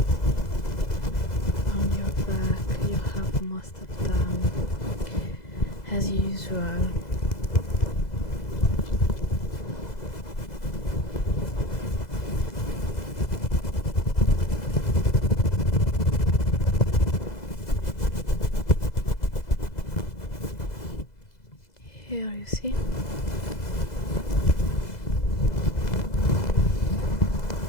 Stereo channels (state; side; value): late; right; 2.0 ms